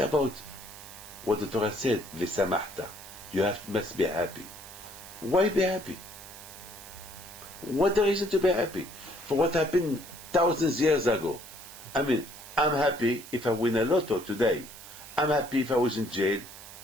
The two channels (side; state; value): right; noise; hiss, 15 dB below the sound